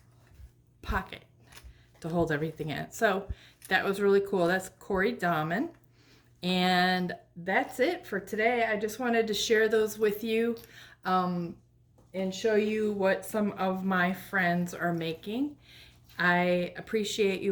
pocket to hold everything in. So that was really cool. That's Cori Dahmen. And that's it for today. I just wanted to share those with you and show you what some of my friends are making. I appreciate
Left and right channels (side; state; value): both; identical; correlation 1.00